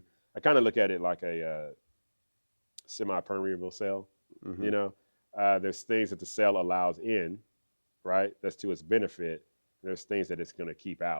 I kind of look at it like a semi-permeable cell. There's things that the cell allows in, right? That's to its benefit. There's things that it's going to keep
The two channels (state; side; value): inverted; both; correlation -1.00